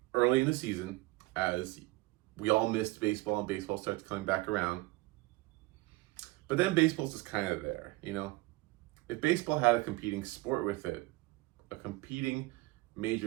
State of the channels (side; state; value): left; quieter; 21.2 dB